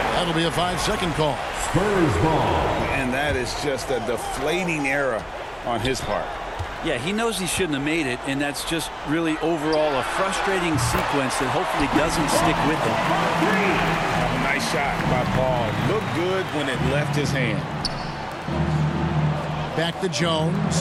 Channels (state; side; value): identical; both; correlation 1.00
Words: That'll be a 5-second call. Spurs ball. And that is just a deflating error on his part. Yeah, he knows he shouldn't have made it, and that's just really overall a frustrating sequence that hopefully doesn't stick with him. Nice shot by Paul. Looked good when it left his hand. Back to